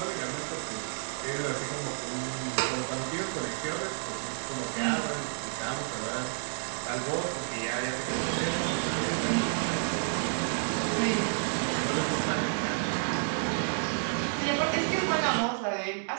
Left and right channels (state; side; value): silent; left; digital silence